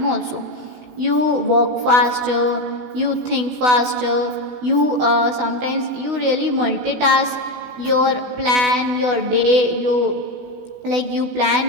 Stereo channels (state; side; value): late; left; 16 ms